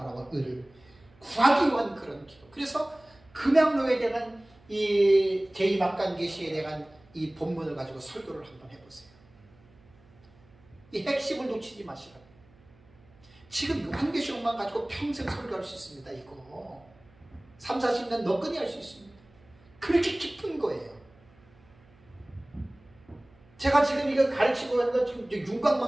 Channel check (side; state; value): right; noise; hum, 28 dB below the sound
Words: 의를 구하기 위한 그런 기도. 그래서 금양로에 대한 이 제2막간계시에 대한 이 본문을 가지고 설교를 한번 해보세요. 이 핵심을 놓치지 마시라고. 지금 요한계시록만 가지고 평생 설교할 수 있습니다. 이거 3, 40년 너끈히 할 수 있습니다. 그렇게 깊은 거예요. 제가 지금 이거 가르치고 하는 건 지금